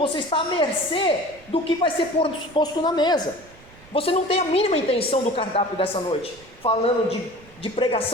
está à mercê do que vai ser posto na mesa. Você não tem a mínima intenção do cardápio dessa noite, falando de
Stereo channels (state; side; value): noise; right; rumble, 24 dB below the sound